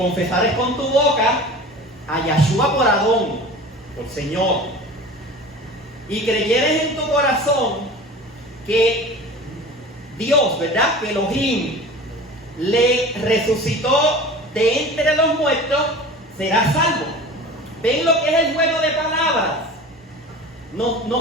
con tu boca a Yahshua por Adón, por Señor, y creyeres en tu corazón que Dios, ¿verdad?, que Elohim le resucitó de entre los muertos, serás salvo. ¿Ven lo que es el juego de palabras?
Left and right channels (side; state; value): both; normal; correlation 0.37